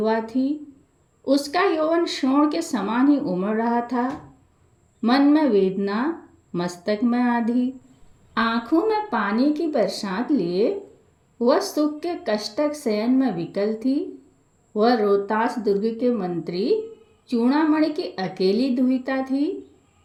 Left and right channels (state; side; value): identical; both; correlation 1.00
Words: थी। उसका यौवन शोण के समान ही उमड़ रहा था। मन में वेदना, मस्तक में आधी, आंखों में पानी की बरसात लिए वह सुख के कष्टक शयन में विकल थी। वह रोहतास दुर्ग के मंत्री चूड़ामणि की अकेली दुहिता थी।